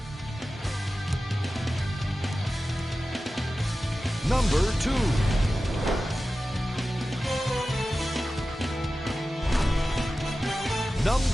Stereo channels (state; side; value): normal; both; correlation 0.94